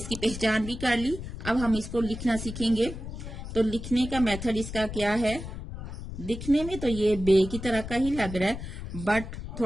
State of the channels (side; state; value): left; noise; rumble, 9 dB below the sound